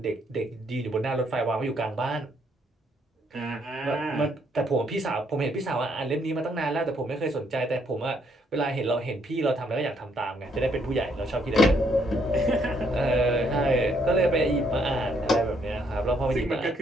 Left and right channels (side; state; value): both; normal; correlation 0.71